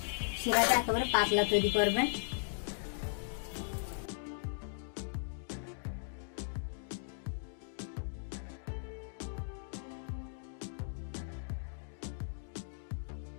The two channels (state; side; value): silent; right; digital silence